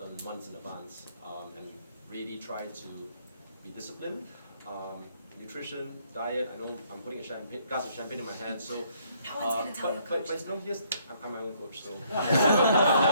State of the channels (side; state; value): both; inverted; correlation -0.67